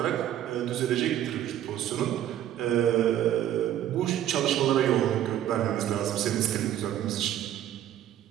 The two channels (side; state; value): left; quieter; 11.6 dB